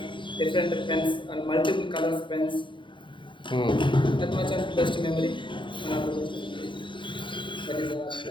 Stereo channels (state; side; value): late; right; 0.23 ms